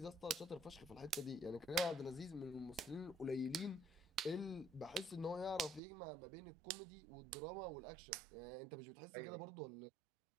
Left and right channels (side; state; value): left; drops out; at 5.8 s